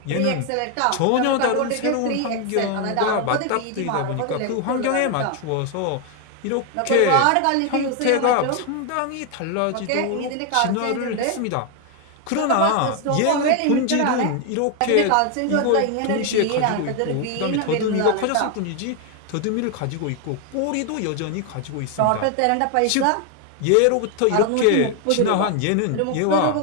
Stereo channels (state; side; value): different; both; correlation 0.01